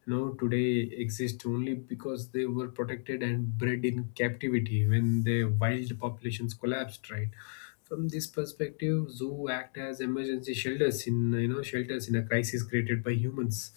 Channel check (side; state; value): right; silent; digital silence